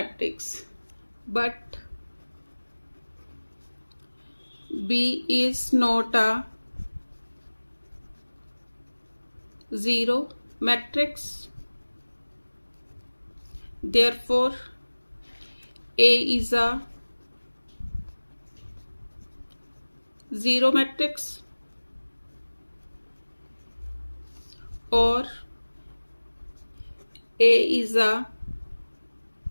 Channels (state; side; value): inverted; both; correlation -1.00